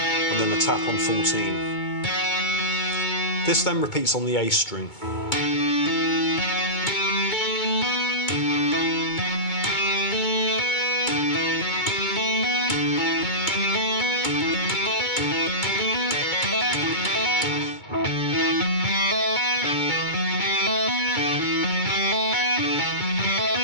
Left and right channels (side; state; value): right; late; 2.2 ms